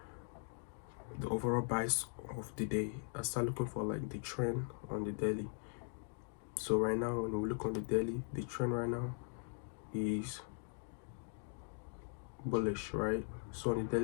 the overall bias of the day. I start looking for like the trend on the daily. So right now, when we look on the daily, the trend right now is bullish, right? So on the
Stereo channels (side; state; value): right; silent; 51 dB below the other